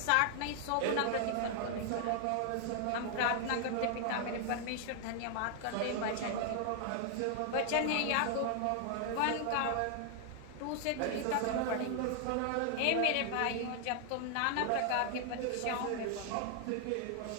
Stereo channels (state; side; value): different; both; correlation 0.00